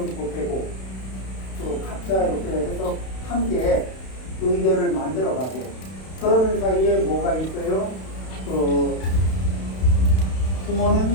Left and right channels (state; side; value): late; right; 32 ms